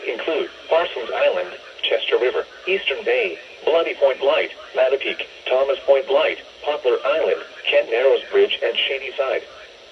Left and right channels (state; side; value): identical; both; correlation 1.00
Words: include Parsons Island, Chester River, Eastern Bay, Bloody Point Light, Mattapique, Thomas Point Light, Poplar Island, Kent Narrows Bridge, and Shady Side.